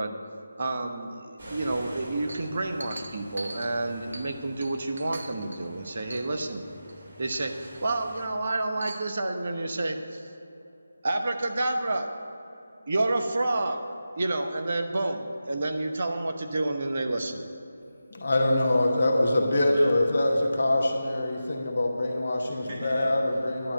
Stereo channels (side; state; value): both; inverted; correlation -0.92